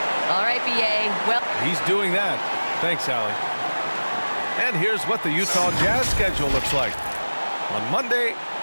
All right, B.A. Well, he's doing that. Thanks, Allie. And here's what the Utah Jazz schedule looks like. On Monday,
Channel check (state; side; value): inverted; both; correlation -1.00